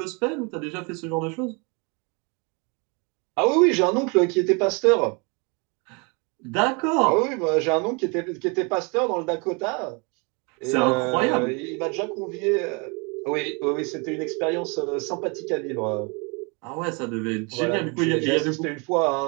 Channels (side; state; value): left; quieter; 31.7 dB